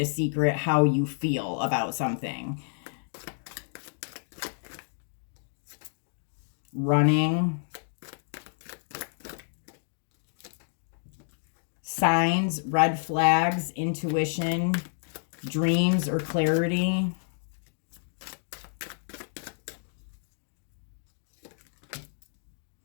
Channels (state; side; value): silent; right; digital silence